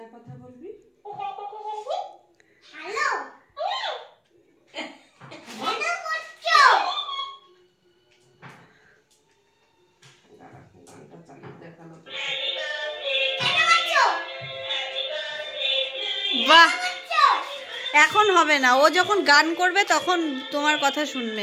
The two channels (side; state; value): both; identical; correlation 1.00